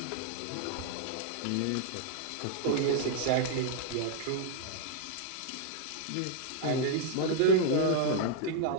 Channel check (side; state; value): both; different; correlation 0.00